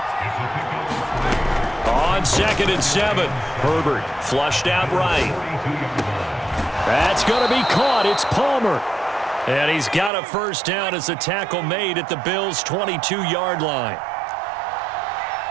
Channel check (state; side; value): drops out; left; at 10.1 s